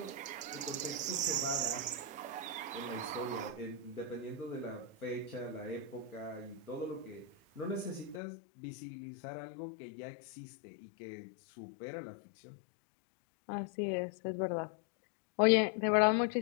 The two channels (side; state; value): right; drops out; at 8.2 s